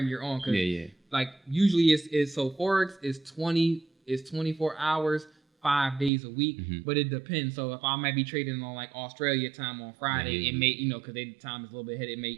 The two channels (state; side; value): drops out; left; at 6.1 s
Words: you're on. Cause like usually it's so Forex is 24 hours. 5 days a week, but it depends. So if I might be trading on like Australia time on Friday, it may, because their time is a little bit ahead, it may